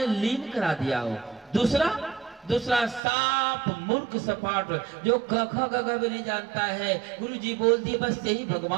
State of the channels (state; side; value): drops out; left; at 3.0 s